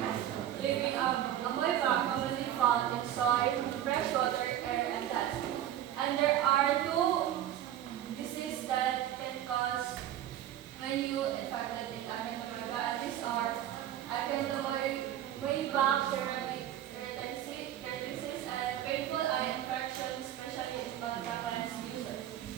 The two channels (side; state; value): left; quieter; 11.7 dB